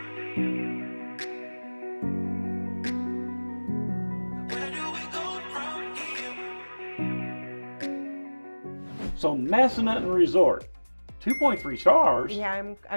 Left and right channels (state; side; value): inverted; both; correlation -1.00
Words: So Massanutten Resort, 2.3 stars. Yeah,